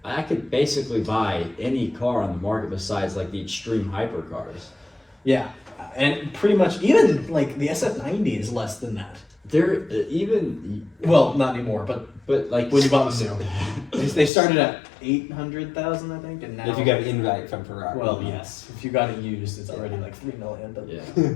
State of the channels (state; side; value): drops out; right; at 14.3 s